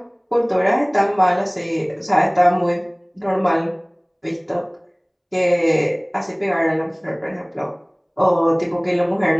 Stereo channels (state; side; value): identical; both; correlation 1.00